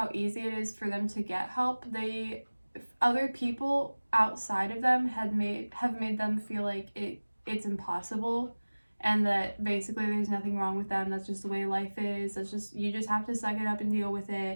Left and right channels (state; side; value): inverted; both; correlation -1.00